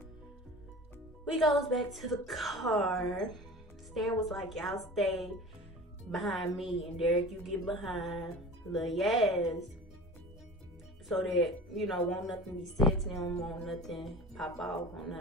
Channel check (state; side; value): normal; both; correlation 0.37